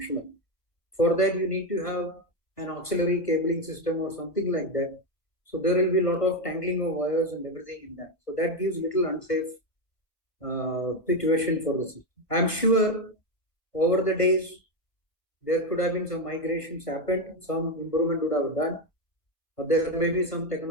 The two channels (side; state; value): right; late; 1.5 ms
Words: For that, you need to have an auxiliary cabling system or something like that. So there will be a lot of tangling of wires and everything in that. So that gives little unsafe situation for the system. I'm sure over the days there could have been some migrations happened, some improvement would have done, or there may be some